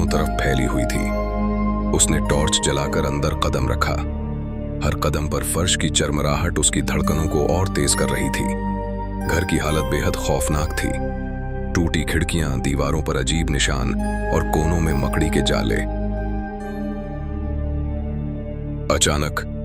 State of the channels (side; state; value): both; identical; correlation 1.00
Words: तरफ फैली हुई थी। उसने टॉर्च जलाकर अंदर कदम रखा। हर कदम पर फर्श की चरमराहट उसकी धड़कनों को और तेज कर रही थी। घर की हालत बेहद खौफनाक थी। टूटी खिड़कियां, दीवारों पर अजीब निशान और कोनों में मकड़ी के जाले।